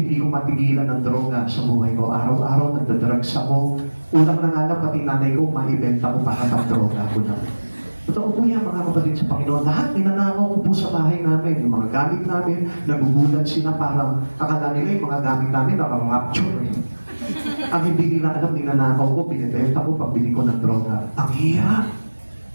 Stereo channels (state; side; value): inverted; both; correlation -1.00